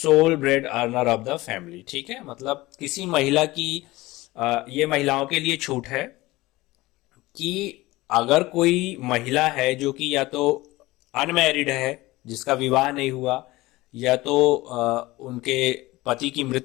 bread earner of the family. ठीक है, मतलब किसी महिला की, ये महिलाओं के लिए छूट है कि अगर कोई महिला है जो कि या तो अनमैरिड है, जिसका विवाह नहीं हुआ, या तो उनके पति की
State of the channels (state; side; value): quieter; right; 19.6 dB